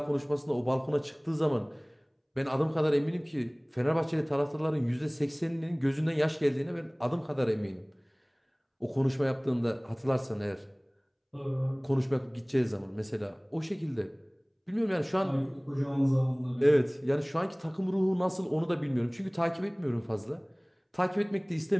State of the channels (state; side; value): identical; both; correlation 1.00